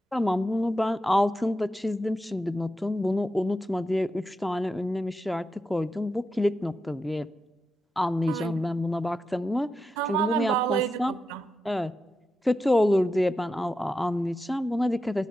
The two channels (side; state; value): both; normal; correlation 0.88